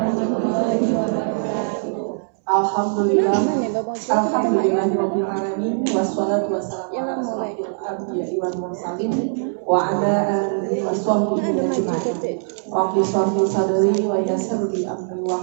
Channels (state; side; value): silent; left; 62 dB below the other